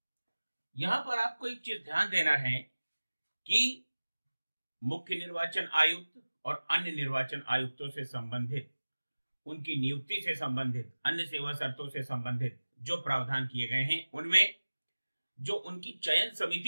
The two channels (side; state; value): both; inverted; correlation -1.00